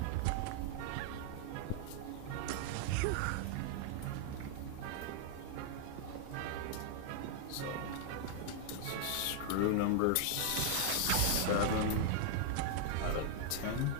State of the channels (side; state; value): both; different; correlation 0.00